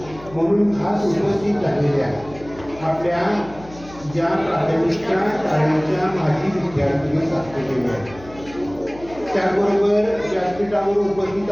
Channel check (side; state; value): left; noise; hum, 19 dB below the sound